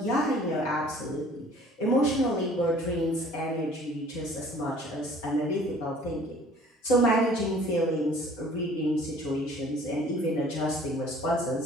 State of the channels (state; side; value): normal; both; correlation 0.52